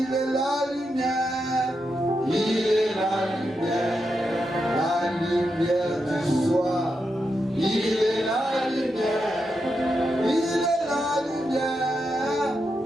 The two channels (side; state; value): both; normal; correlation 0.86